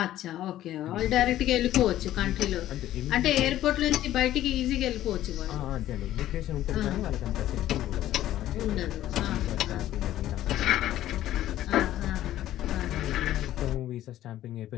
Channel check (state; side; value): quieter; right; 13.3 dB